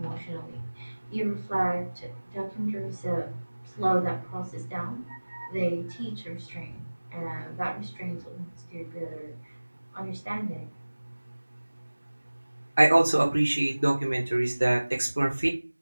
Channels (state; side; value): inverted; both; correlation -1.00